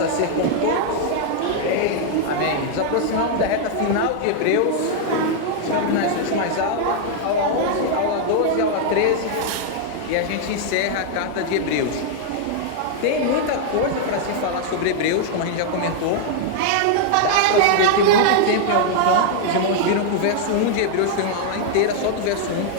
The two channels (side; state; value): both; different; correlation 0.00